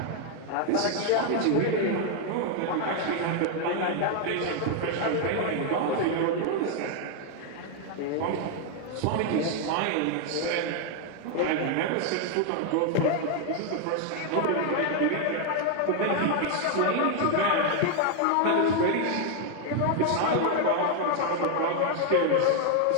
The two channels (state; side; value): different; both; correlation 0.00